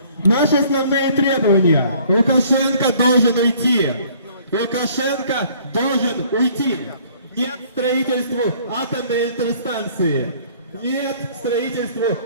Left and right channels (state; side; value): inverted; both; correlation -0.57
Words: Наши основные требования. Лукашенко должен уйти. Лукашенко должен уйти. Нет строительству атомной электростанции. Нет строительству